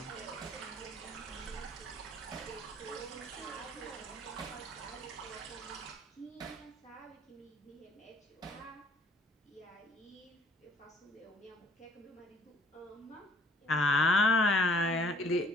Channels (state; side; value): normal; both; correlation 0.58